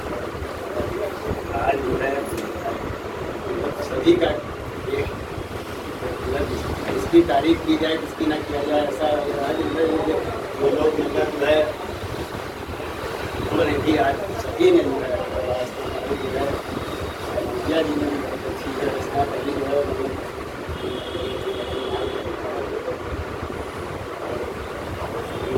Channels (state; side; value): identical; both; correlation 1.00